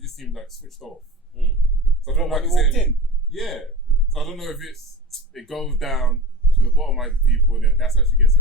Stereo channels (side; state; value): both; normal; correlation 0.32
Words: just seemed like switched off. Mm. So I don't know When if you walked it's in. yeah. So I don't know if it goes down to the bottomizing people and then that's how she gets